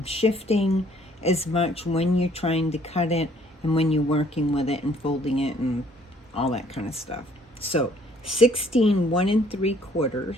shifting as much when you're trying to cut it and when you're working with it and folding it and all that kind of stuff. So 16 1 3/4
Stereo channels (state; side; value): normal; both; correlation 0.61